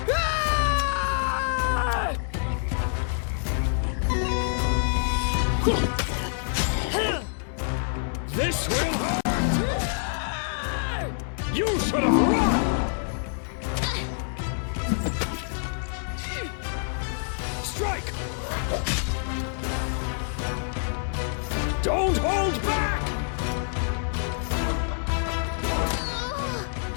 This will hurt! You should have run! Strike! Don't hold back!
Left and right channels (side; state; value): right; silent; digital silence